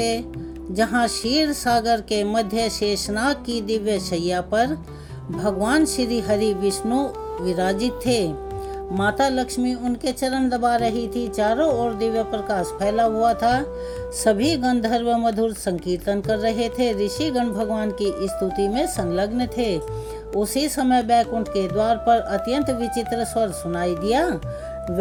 जहाँ क्षीर सागर के मध्य शेषनाग की दिव्य शैया पर भगवान श्री हरि विष्णु विराजित थे। माता लक्ष्मी उनके चरण दबा रही थी। चारों ओर दिव्य प्रकाश फैला हुआ था। सभी गंधर्व मधुर संकीर्तन कर रहे थे। ऋषिगण भगवान की स्तुति में संलग्न थे। उसी समय बैकुंठ के द्वार पर अत्यंत विचित्र स्वर सुनाई दिया।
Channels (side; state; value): both; identical; correlation 1.00